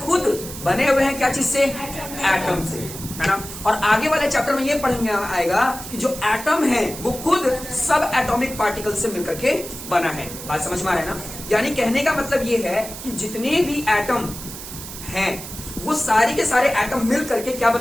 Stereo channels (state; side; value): noise; right; hiss, 11 dB below the sound